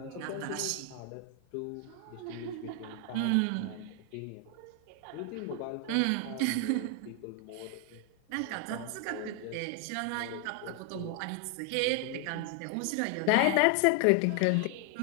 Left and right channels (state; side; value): different; both; correlation 0.00